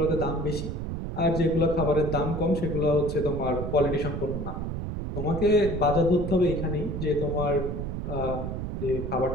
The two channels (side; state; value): right; noise; rumble, 4 dB below the sound